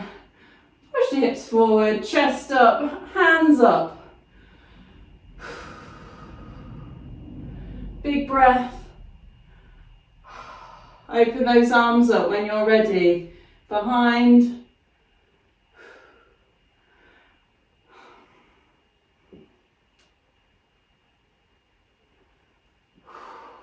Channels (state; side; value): identical; both; correlation 1.00